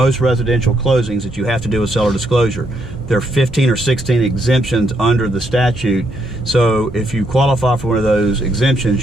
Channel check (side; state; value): both; normal; correlation 0.75